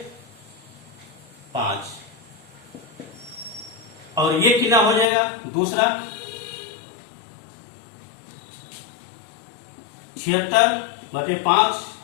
5, और ये कितना हो जाएगा दूसरा, 76 बटे 5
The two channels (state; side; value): drops out; right; at 5.1 s